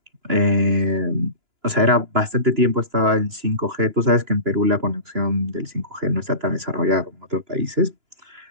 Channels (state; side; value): late; left; 2.9 ms